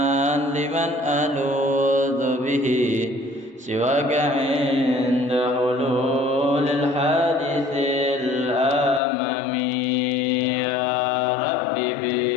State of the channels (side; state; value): right; drops out; at 9.0 s